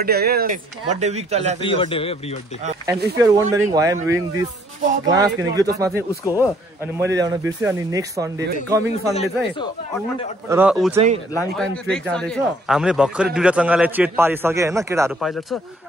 है। बर्थडे वीक चलिरहेको छ। प्री बर्थडे हो, pre birthday. And if you are wondering why I'm wearing this glass किनकि यो चस्मा चाहिँ उसको हो अनि मैले ल्याउन बिर्सेँ। अनि नेक्स्ट सन्डे कमिङ सन्डे चाहिँ र ऊ चाहिँ लाङटाङ ट्रेक जाँदैछ। हामीले भर्खरै दुईटा चंगालाई चेट पारिसके हैन, केटाहरू पाइलट छ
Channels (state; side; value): normal; both; correlation 0.63